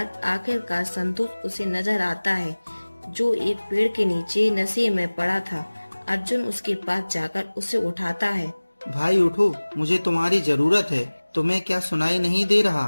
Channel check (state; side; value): inverted; both; correlation -1.00